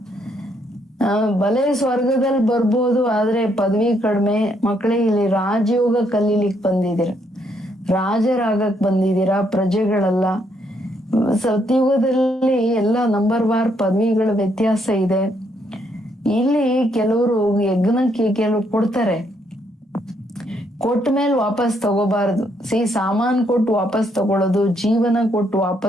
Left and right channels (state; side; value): normal; both; correlation 0.73